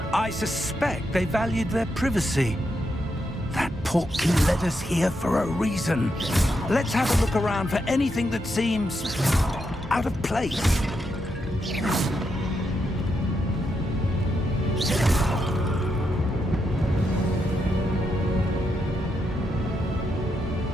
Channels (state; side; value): normal; both; correlation 0.82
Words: I suspect they valued their privacy. That portkey led us here for a reason. Let's have a look around for anything that seems out of place.